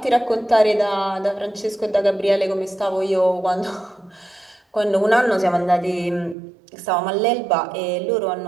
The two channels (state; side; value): drops out; left; at 6.4 s